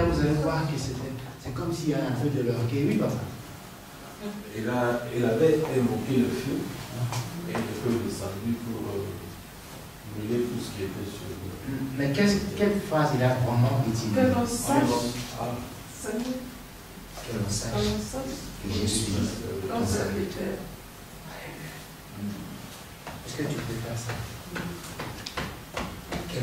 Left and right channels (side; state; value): both; identical; correlation 1.00